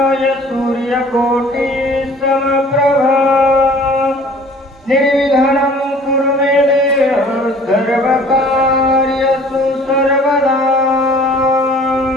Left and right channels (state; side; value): normal; both; correlation 0.50